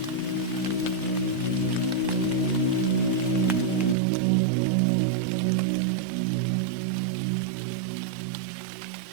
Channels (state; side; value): drops out; left; at 4.0 s